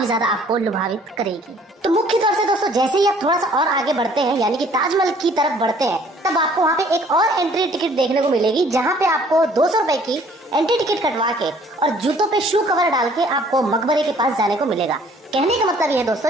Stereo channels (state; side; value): normal; both; correlation 0.57